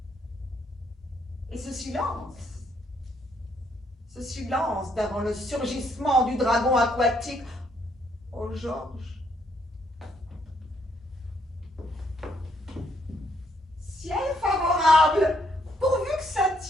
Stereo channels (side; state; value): both; normal; correlation 0.71